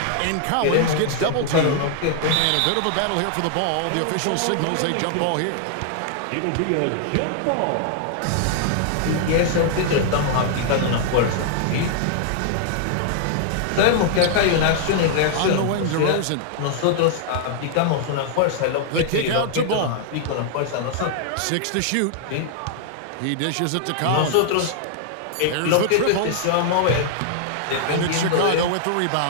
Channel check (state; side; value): different; both; correlation -0.01